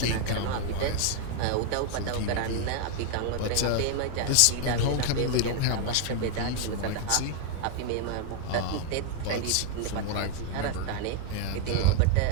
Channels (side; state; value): both; different; correlation 0.00